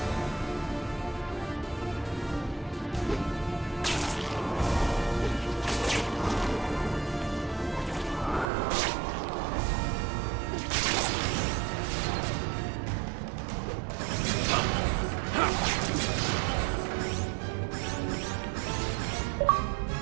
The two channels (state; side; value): drops out; left; at 8.5 s